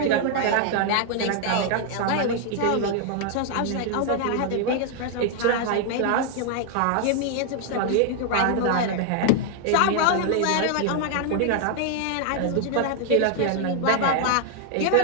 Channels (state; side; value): different; both; correlation 0.00